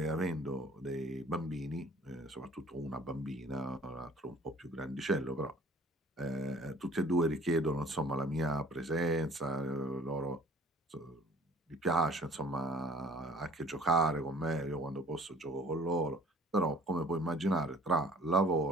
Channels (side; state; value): both; normal; correlation 0.52